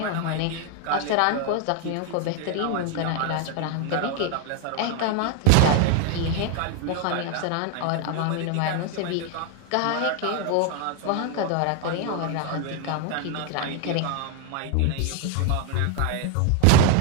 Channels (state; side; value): different; both; correlation 0.01